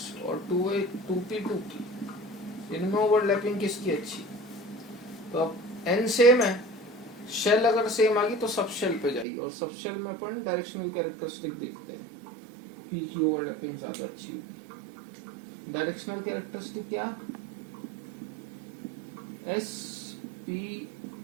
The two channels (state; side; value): drops out; left; at 9.2 s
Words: और 2p, इनमें ओवरलैपिंग किसकी अच्छी? तो अब n सेम है, शेल अगर सेम आ गई तो सब शेल पे जाइए, और सब शेल में अपन डायरेक्शनल कैरेक्टरिस्टिक देखते हैं, P की ओवरलैपिंग ज्यादा अच्छी होगी। डायरेक्शनल कैरेक्टरिस्टिक क्या? S, P,